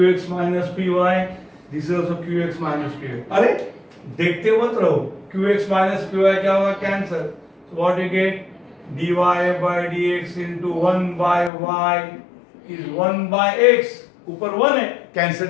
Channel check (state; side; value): drops out; right; at 11.5 s